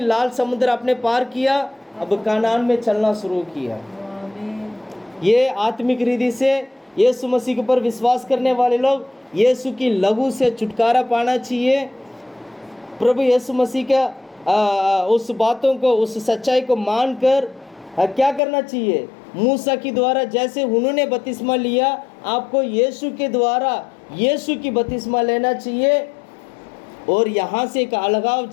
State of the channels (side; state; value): right; drops out; at 18.4 s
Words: लाल समुद्र आपने पार किया, अब कनान में चलना शुरू किया। ये आत्मिक रीति से यीशु मसीह के ऊपर विश्वास करने वाले लोग यीशु की लहू से छुटकारा पाना चाहिए। प्रभु यीशु मसीह का उस बातों को, उस सच्चाई को मानकर क्या करना चाहिए? मूसा के द्वारा जैसे उन्होंने बपतिस्मा लिया, आपको यीशु के द्वारा यीशु की बपतिस्मा लेना चाहिए, और यहाँ से एक अलगाव